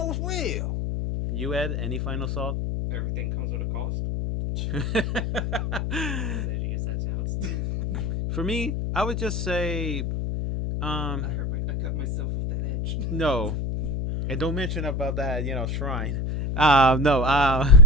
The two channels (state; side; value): noise; left; hum, 2 dB below the sound